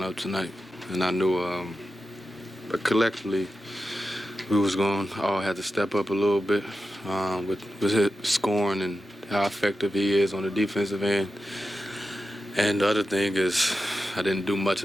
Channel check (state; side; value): normal; both; correlation 0.91